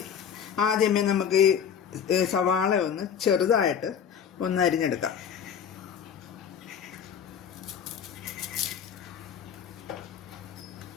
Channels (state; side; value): quieter; right; 7.9 dB